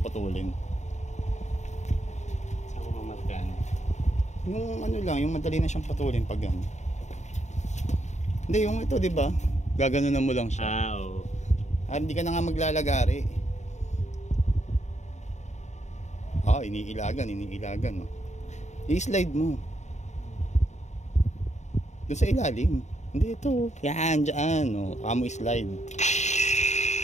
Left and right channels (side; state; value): right; late; 0.34 ms